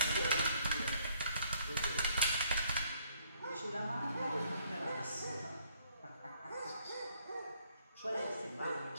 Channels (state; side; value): inverted; both; correlation -0.66